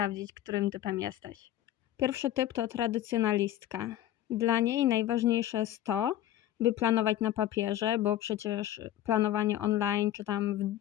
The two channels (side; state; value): right; quieter; 12.7 dB